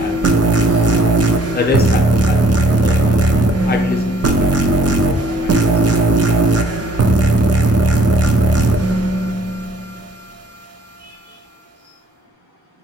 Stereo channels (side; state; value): both; normal; correlation 0.60